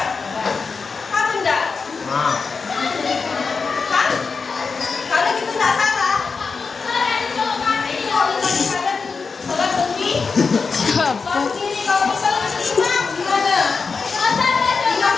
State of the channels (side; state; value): right; quieter; 4.9 dB